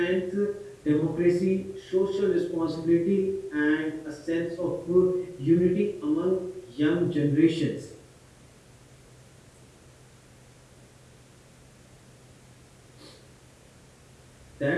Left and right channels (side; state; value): both; identical; correlation 1.00